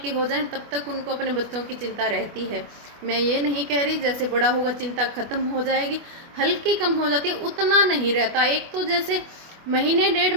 हो जाएं तब तक उनको अपने बच्चों की चिंता रहती है। मैं ये नहीं कह रही जैसे बड़ा होगा चिंता खत्म हो जाएगी, हल्की कम हो जाती है, उतना नहीं रहता। एक तो जैसे महीने, 1.5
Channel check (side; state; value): left; late; 25 ms